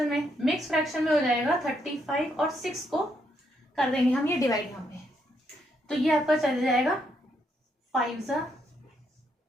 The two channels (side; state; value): both; normal; correlation 0.76